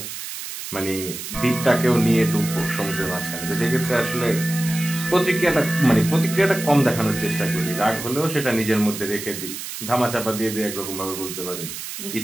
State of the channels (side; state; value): right; noise; hiss, 8 dB below the sound